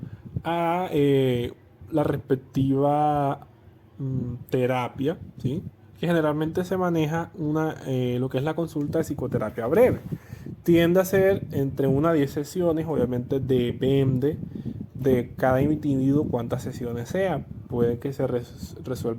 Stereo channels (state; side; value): identical; both; correlation 1.00